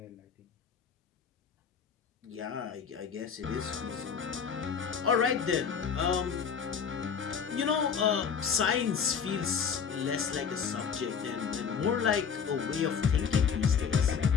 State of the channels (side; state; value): right; quieter; 6.7 dB